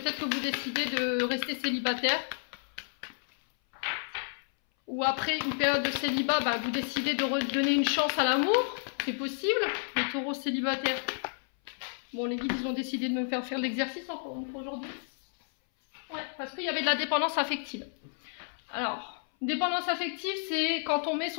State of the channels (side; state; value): right; silent; 57 dB below the other